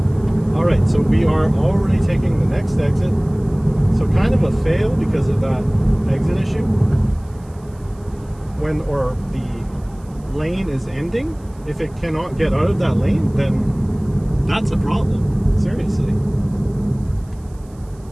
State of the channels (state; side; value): noise; right; hiss, 30 dB below the sound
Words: All right, so we are already taking the next exit. So kind of a fail because of that exit issue. Or the lane is ending. If it cannot get out of that lane, then that's a problem. Seriously.